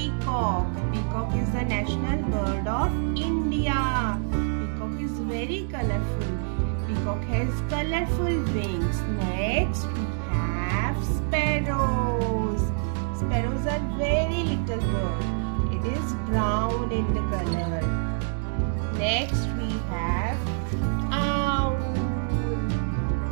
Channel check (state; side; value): silent; left; digital silence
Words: Peacock is the national bird of India. Peacock is very colorful. Peacock has colorful wings. Next, we have sparrows. Sparrows are very little bird. It is brown in the color. Next, we have owl.